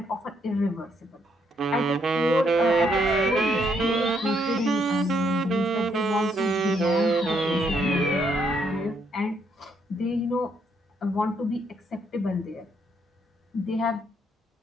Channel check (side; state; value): both; normal; correlation 0.73